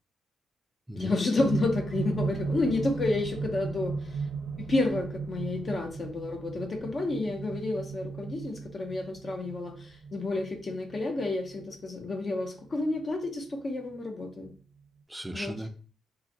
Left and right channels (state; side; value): normal; both; correlation 0.84